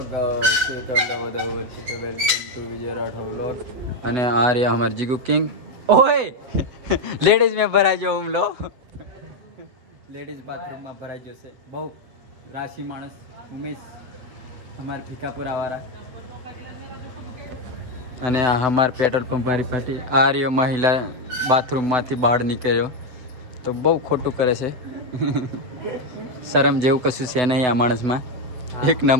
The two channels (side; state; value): left; late; 8.3 ms